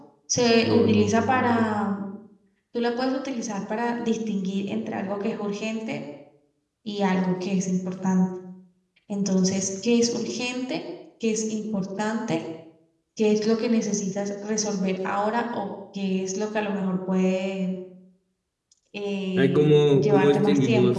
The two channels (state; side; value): identical; both; correlation 1.00